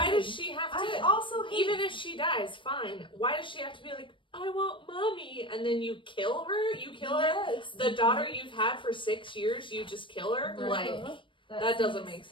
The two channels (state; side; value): late; right; 0.24 ms